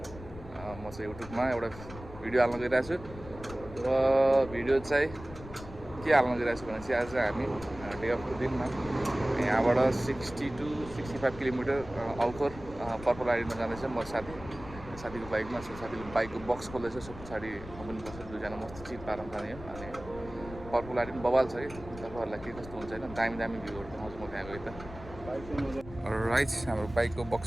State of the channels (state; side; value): noise; left; rumble, 14 dB below the sound